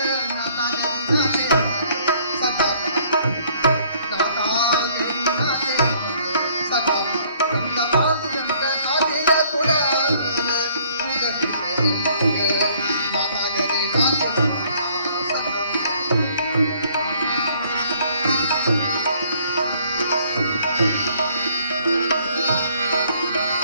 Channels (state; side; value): inverted; both; correlation -0.61